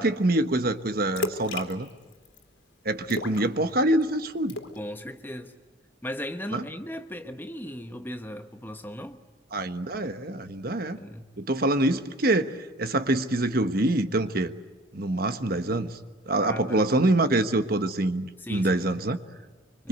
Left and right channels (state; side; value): normal; both; correlation 0.46